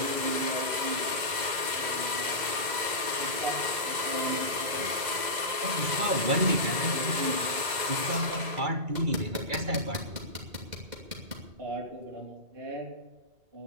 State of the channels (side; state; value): left; late; 2.0 ms